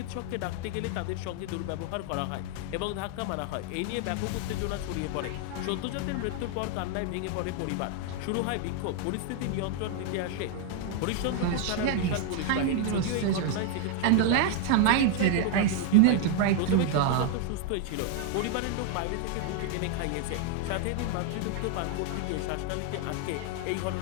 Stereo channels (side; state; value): both; different; correlation 0.00